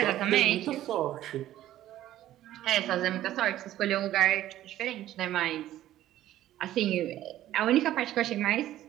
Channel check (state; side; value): quieter; left; 13.4 dB